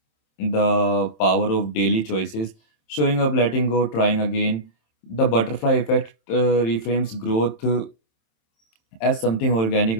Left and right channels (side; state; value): right; late; 27 ms